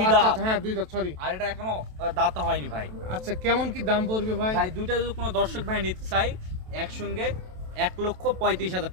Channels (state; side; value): late; left; 27 ms